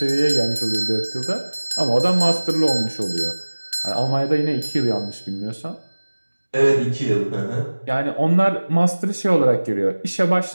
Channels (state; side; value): inverted; both; correlation -1.00